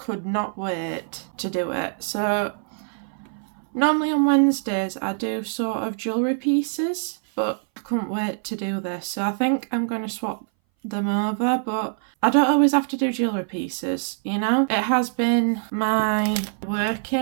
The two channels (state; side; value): silent; left; 60 dB below the other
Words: not wait to do it. So normally on Wednesdays I do sort of jewellery pieces, but I couldn't wait to do this, so I think I'm going to swap them over. But I don't always have to do jewellery pieces, you know. It has been my